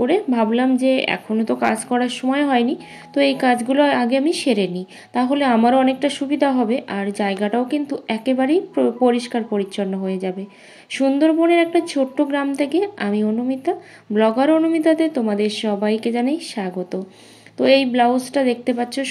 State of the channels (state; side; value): identical; both; correlation 1.00